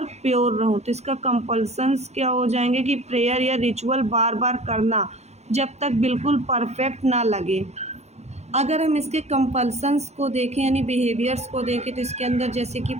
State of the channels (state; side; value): late; left; 0.32 ms